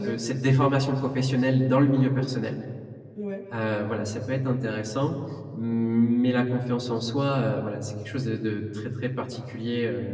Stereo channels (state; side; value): identical; both; correlation 1.00